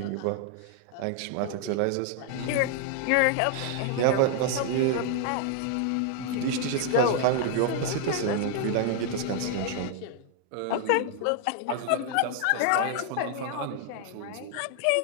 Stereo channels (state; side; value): different; both; correlation 0.00